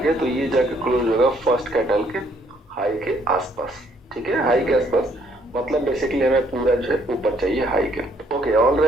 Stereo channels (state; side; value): normal; both; correlation 0.67